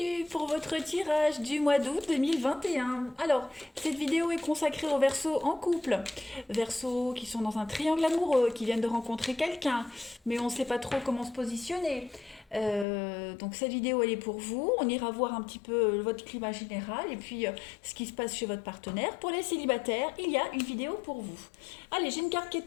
pour votre tirage du mois d'août 2021. Alors, cette vidéo est consacrée aux Verseaux en couple. Verseaux qui sont dans un triangle amoureux, qui viennent de rencontrer quelqu'un, mais on ne sait pas trop comment se positionner. Donc cette vidéo, elle est pour vous. On ira voir un petit peu votre climat général et puis ce qui se passe chez votre partenaire. Pour les célibataires, il y a une vidéo pour vous. Allez, j'ai une carte qui est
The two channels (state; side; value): drops out; right; at 12.9 s